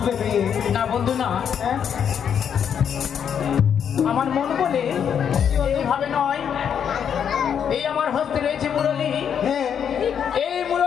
বিয়ে। না বন্ধু না, হ্যাঁ আমার মন বলে এইভাবে নয়। এই আমার হস্তে রয়েছে মুরলী, হ্যাঁ এই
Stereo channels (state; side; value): quieter; right; 8.1 dB